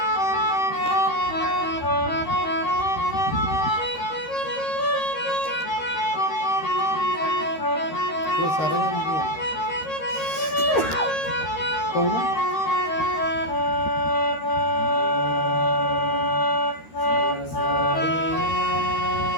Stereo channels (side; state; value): right; late; 13 ms